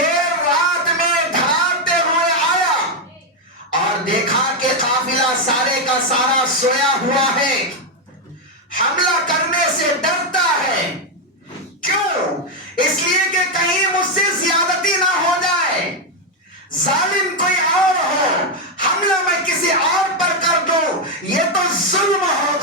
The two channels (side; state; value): both; normal; correlation 0.04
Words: رات میں دھڑاتے ہوئے آیا اور دیکھا کہ قافلہ سارے کا سارا سویا ہوا ہے، حملہ کرنے سے ڈرتا ہے۔ کیوں؟ اس لیے کہ کہیں مجھ سے زیادتی نہ ہو جائے، ظالم کوئی اور ہو، حملہ میں کسی اور پر کر دوں، یہ تو ظلم